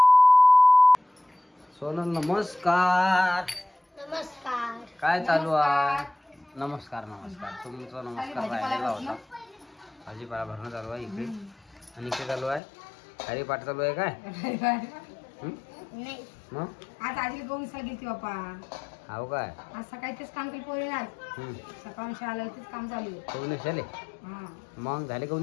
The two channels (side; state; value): right; drops out; at 12.6 s